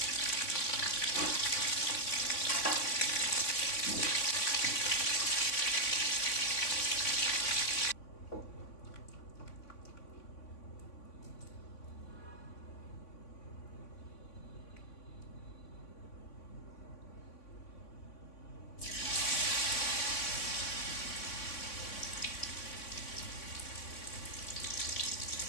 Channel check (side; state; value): right; late; 3.5 ms